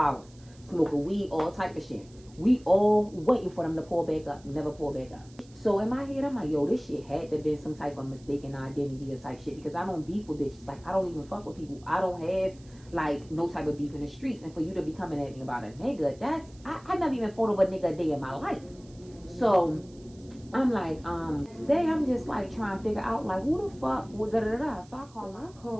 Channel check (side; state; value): right; noise; hiss, 27 dB below the sound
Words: Smoking weed, all type of shit. We all waiting for them to pull back up. Never pull back up. So in my head, I'm like, yo, this shit had to be some type of mistaken identity or type shit. Because I don't beef with bitches. Like, I don't even fuck with people. I don't have, like, no type of beef in the streets. And for you to be coming at me about a nigga, that's, I never even thought of a nigga a day in my life. So I'm like, today I'm just like trying to figure out, like, who the fuck, So I